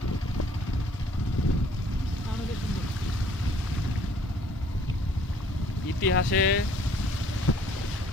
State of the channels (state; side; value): normal; both; correlation 0.59